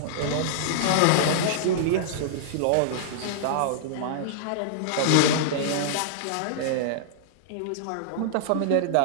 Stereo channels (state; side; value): different; both; correlation -0.02